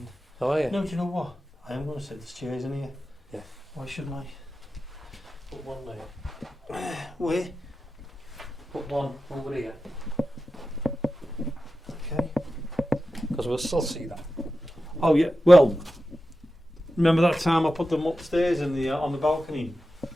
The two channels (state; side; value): normal; both; correlation 0.92